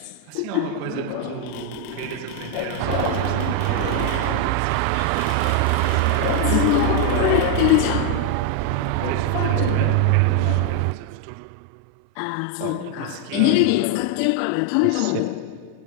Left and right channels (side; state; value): both; different; correlation 0.00